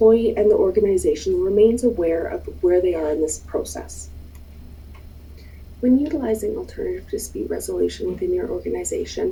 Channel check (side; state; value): both; identical; correlation 1.00